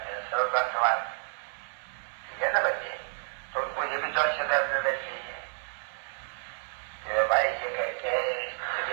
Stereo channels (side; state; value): left; silent; 58 dB below the other